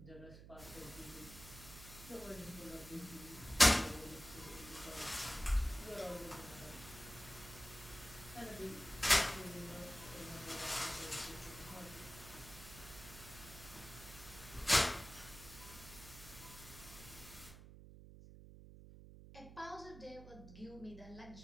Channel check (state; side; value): noise; right; hum, 15 dB below the sound